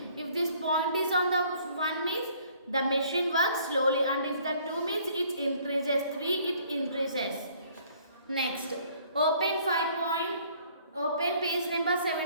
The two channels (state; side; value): inverted; both; correlation -0.59